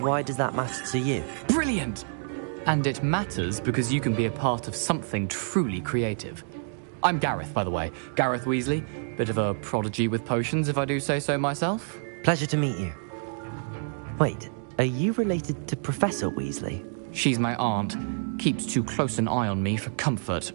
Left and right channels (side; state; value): left; silent; digital silence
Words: does that matter to you? Brilliant! And it matters because you can be a part of something truly creative. I'm Gareth, by the way. Gareth Weasley. Bit of a prodigy with potions, if I do say so myself. Pleasure to meet you. Wait, are you related to Professor Weasley? She's my aunt. Keeps too close an eye on me for comfort.